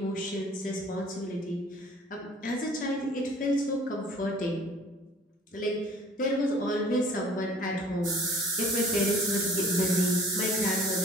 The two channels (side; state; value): both; normal; correlation 0.51